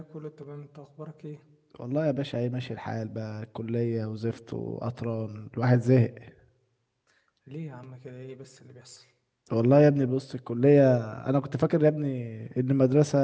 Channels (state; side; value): identical; both; correlation 1.00